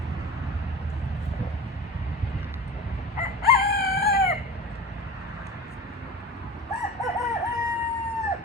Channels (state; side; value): normal; both; correlation 0.32